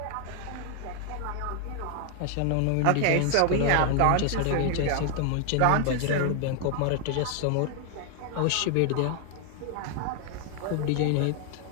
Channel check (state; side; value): different; both; correlation 0.00